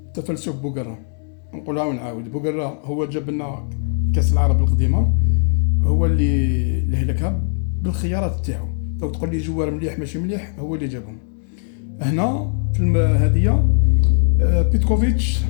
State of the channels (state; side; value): silent; right; 66 dB below the other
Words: تفلسف بوغرا. نقولها ونعاود، بوغرا هو جاب لنا كأس العرب القديمة، هو اللي هلكها بالخيارات تاعو. لو تقول لي جوار مليح ماشي مليح، هو اللي جابهم. هنا في هذه بيتكوفيتش